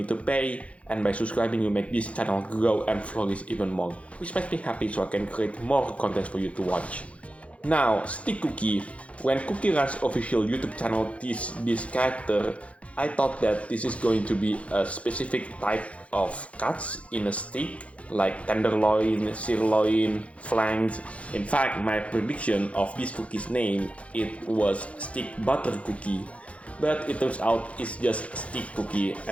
to pay, and by subscribing you make this channel grow and flourish even more, which makes me happy so I can create more content for you to watch. Now, Steakcookie. When CookieRun's official YouTube channel teased this character, I thought that this is going to be a specific type of cuts in a steak, like tenderloin, sirloin, flanks. In fact, my prediction of this cookie's name, it was steak butter cookie. But it turns out it's just Steakcookie,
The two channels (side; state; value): right; late; 0.063 ms